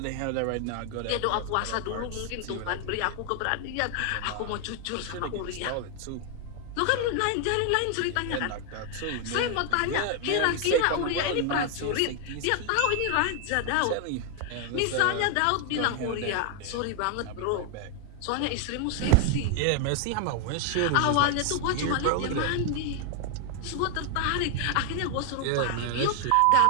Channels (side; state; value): both; different; correlation 0.00